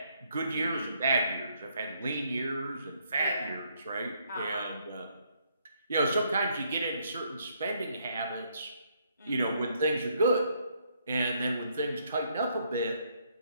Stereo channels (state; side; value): inverted; both; correlation -0.71